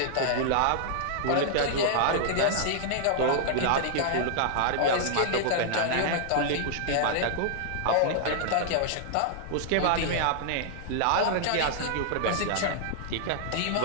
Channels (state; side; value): different; both; correlation -0.01